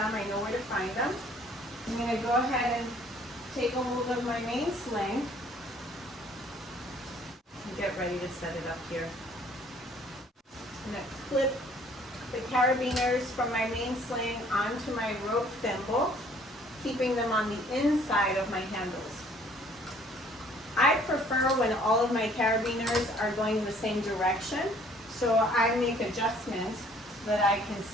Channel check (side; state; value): both; normal; correlation 0.58